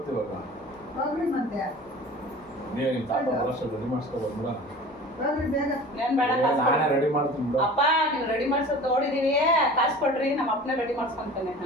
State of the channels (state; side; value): normal; both; correlation 0.40